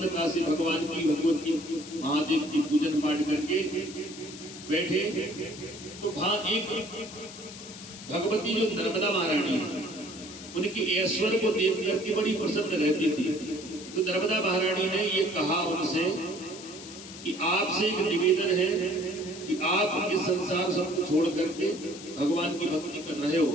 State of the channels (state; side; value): noise; left; hiss, 14 dB below the sound